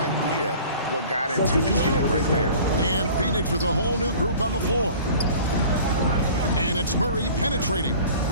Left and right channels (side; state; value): both; inverted; correlation -0.45